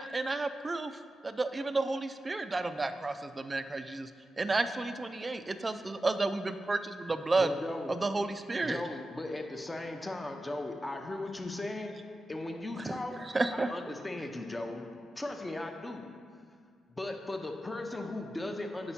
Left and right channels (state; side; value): normal; both; correlation 0.93